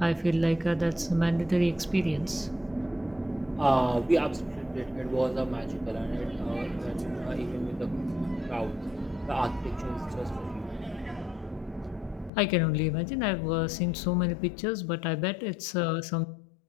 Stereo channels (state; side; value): drops out; right; at 12.3 s